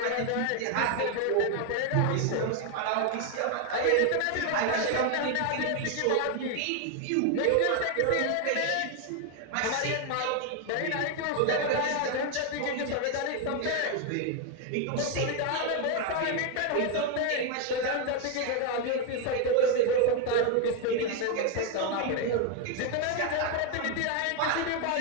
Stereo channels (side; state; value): both; different; correlation 0.01